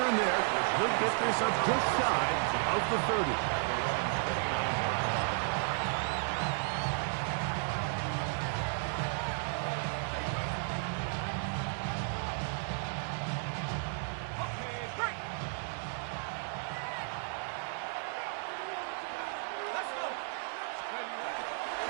there. He'll get this up just shy of the 30. Okay, break. Let's go.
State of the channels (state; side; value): silent; left; 55 dB below the other